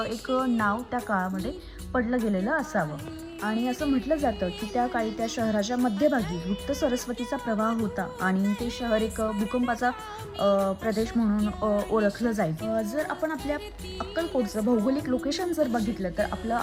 एक नाव त्या काळामध्ये पडलं गेलेलं असावं. आणि असं म्हटलं जातं की त्या काळी त्या शहराच्या मध्यभागी गुप्त सरस्वतीचा प्रवाह होता आणि ते शहर एक भूकंपाचा प्रदेश म्हणून ओळखलं जाईल. जर आपण आपल्या अक्कलकोटचं भौगोलिक लोकेशन जर बघितलं तर आपलं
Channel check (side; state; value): both; identical; correlation 1.00